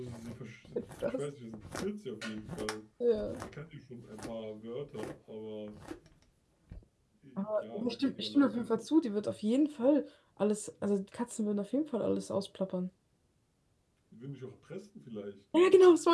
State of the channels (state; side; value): identical; both; correlation 1.00